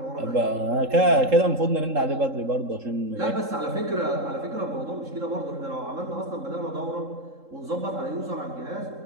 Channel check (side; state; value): left; late; 3.7 ms